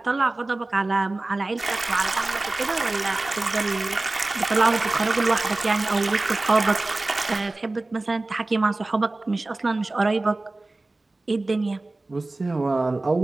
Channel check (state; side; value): quieter; left; 3.0 dB